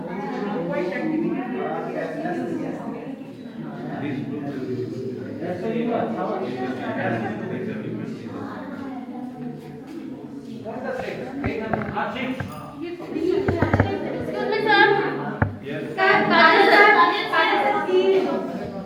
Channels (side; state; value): both; identical; correlation 1.00